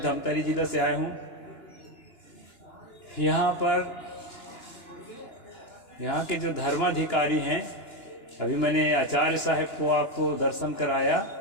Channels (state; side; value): late; right; 2.9 ms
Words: जिला से आया हूँ। यहाँ पर यहाँ के जो धर्माधिकारी हैं, अभी मैंने आचार्य साहब को आपको दर्शन कराया।